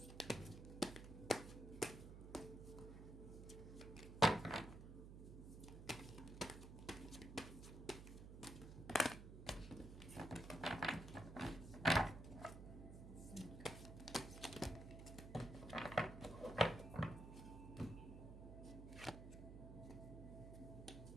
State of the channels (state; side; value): noise; right; hum, 11 dB below the sound